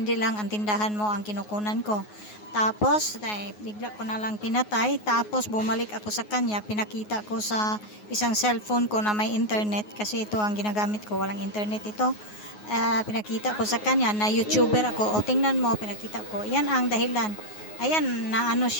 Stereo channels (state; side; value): late; right; 9.5 ms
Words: lang ang tindahan mo ang kinukunan ko. Tapos, bigla ko na lang pinatay, tapos bumalik ako sa kanya, pinakita ko sa isang cellphone ko na may internet, kasi ito ang ginagamit ko, walang internet ito. Pinakita ko sa kanya na YouTuber ako, tingnan mo, pinakita ko, yan ang dahilan. Ayan,